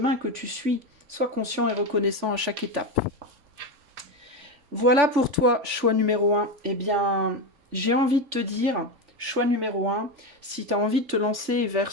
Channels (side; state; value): left; late; 3.4 ms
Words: que tu suis. Sois conscient et reconnaissant à chaque étape. Voilà pour toi, choix numéro 1. Eh bien, j'ai envie de te dire, choix numéro 1, si tu as envie de te lancer vers